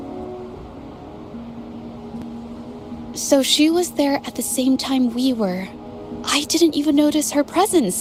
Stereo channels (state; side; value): identical; both; correlation 1.00